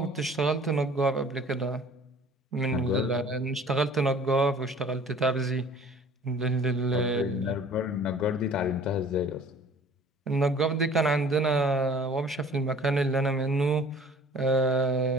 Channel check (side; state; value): both; normal; correlation 0.50